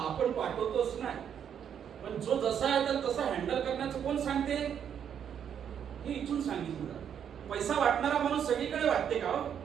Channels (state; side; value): quieter; left; 8.5 dB